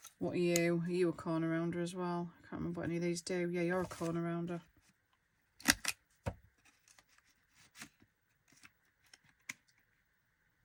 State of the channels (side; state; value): both; identical; correlation 1.00